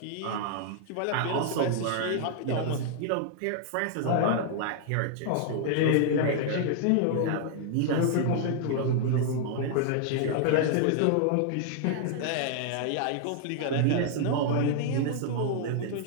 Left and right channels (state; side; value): different; both; correlation -0.01